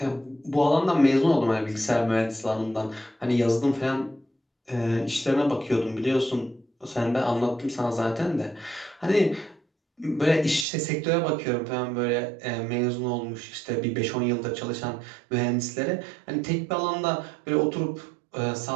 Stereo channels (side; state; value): left; drops out; at 10.7 s